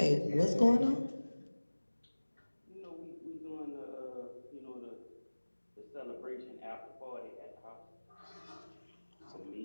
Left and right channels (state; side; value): inverted; both; correlation -1.00